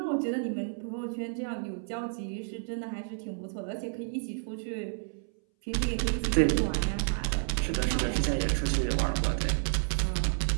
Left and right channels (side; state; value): left; silent; 58 dB below the other